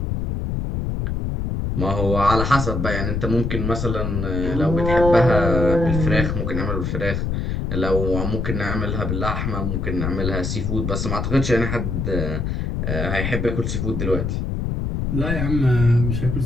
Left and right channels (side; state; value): left; noise; rumble, 1 dB below the sound